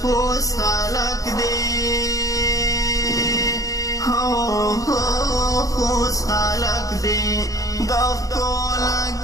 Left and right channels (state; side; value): late; right; 0.17 ms